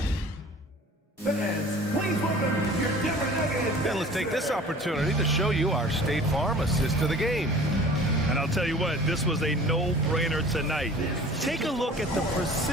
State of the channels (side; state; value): both; normal; correlation 0.45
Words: And let's take this opportunity to show you our State Farm assist to the game. And I'll tell you what, this was a no-brainer tonight. Take a look at the